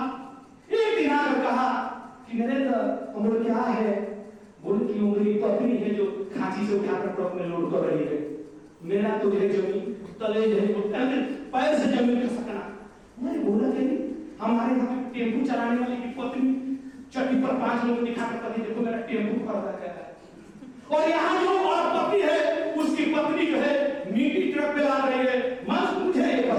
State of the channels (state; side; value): identical; both; correlation 1.00